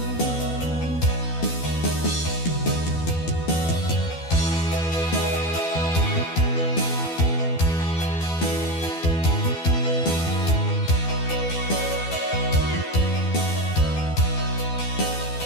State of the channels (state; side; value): late; right; 12 ms